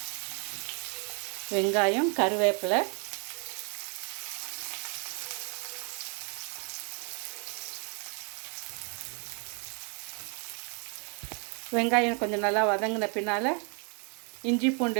வெங்காயம், கருவேப்பிலை, வெங்காயம் கொஞ்சம் நல்லா வதங்கின பின்னால் இஞ்சி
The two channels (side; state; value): left; quieter; 37.4 dB